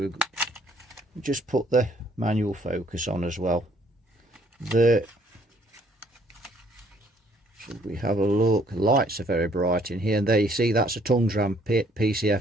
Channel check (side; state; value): both; normal; correlation 0.64